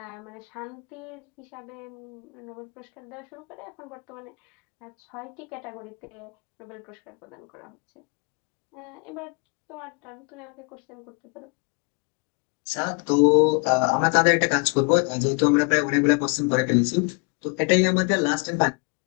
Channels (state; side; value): quieter; right; 36.4 dB